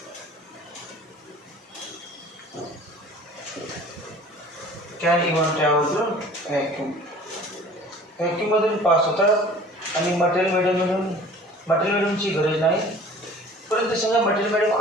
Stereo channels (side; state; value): both; normal; correlation 0.47